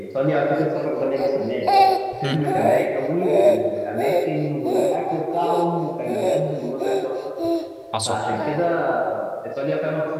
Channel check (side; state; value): both; identical; correlation 1.00